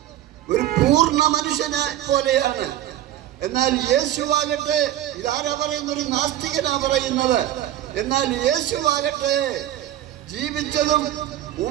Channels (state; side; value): quieter; left; 12.8 dB